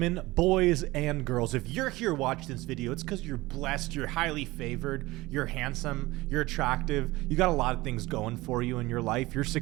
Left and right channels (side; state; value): left; quieter; 20.0 dB